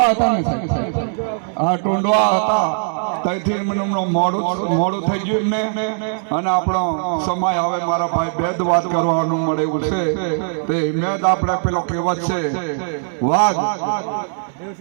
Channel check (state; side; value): silent; left; digital silence